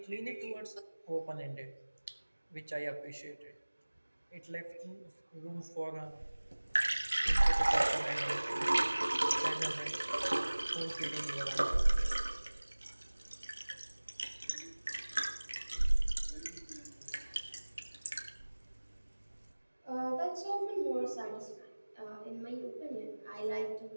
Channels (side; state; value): both; inverted; correlation -1.00